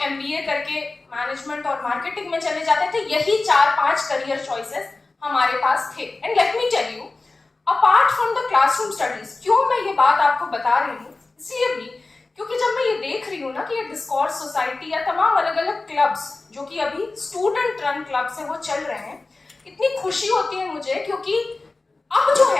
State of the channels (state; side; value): quieter; right; 3.4 dB